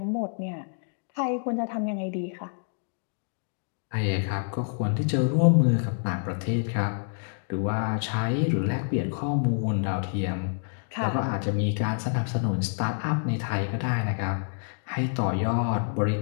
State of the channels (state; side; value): silent; right; digital silence